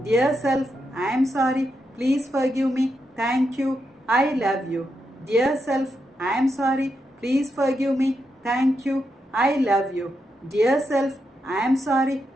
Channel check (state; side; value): normal; both; correlation 0.84